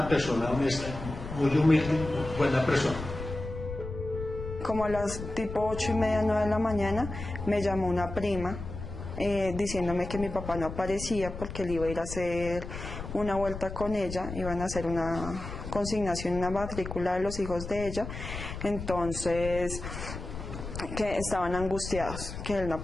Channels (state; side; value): noise; left; rumble, 8 dB below the sound